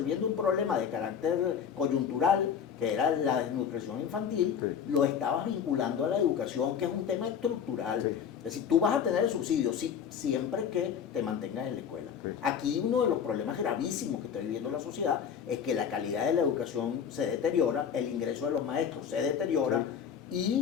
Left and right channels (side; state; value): right; quieter; 7.7 dB